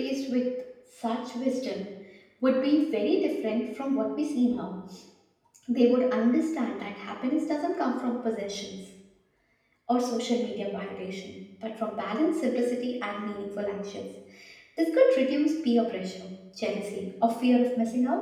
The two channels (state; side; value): identical; both; correlation 1.00